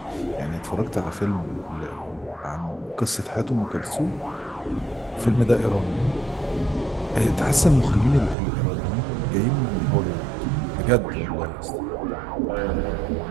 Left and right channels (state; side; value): drops out; left; at 8.3 s